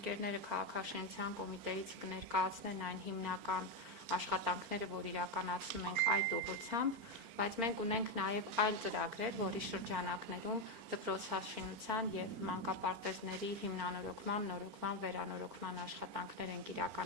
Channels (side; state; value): left; late; 4.4 ms